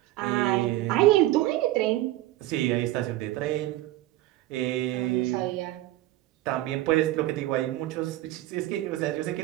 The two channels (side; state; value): left; quieter; 15.9 dB